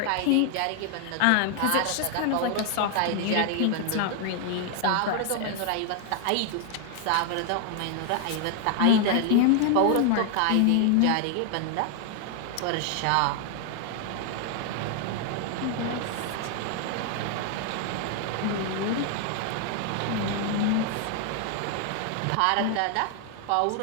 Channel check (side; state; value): both; different; correlation 0.00